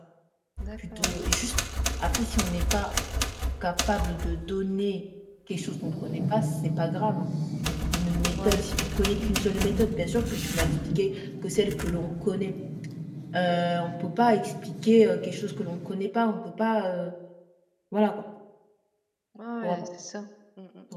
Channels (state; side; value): identical; both; correlation 1.00